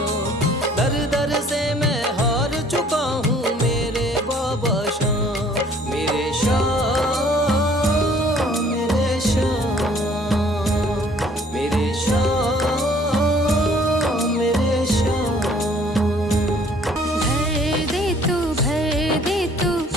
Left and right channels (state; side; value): normal; both; correlation 0.57